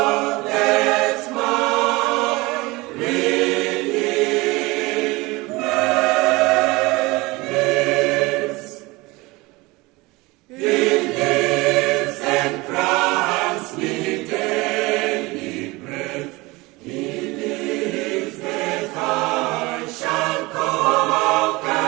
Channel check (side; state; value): left; quieter; 22.8 dB